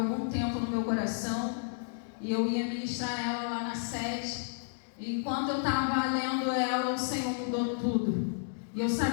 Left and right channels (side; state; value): right; silent; digital silence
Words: tempo no meu coração. E eu ia ministrar ela lá na sede. E enquanto eu estava lendo ela, o Senhor mudou tudo. E eu